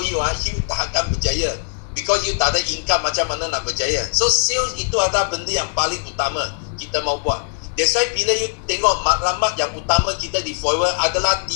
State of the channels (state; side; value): silent; right; digital silence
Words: you, you tak akan berjaya. Because you tak ada income, macam mana nak berjaya. So sales itu adalah benda yang paling utama kita mau buat. That's why bila you tengok maklumat yang utama kita di Forever adalah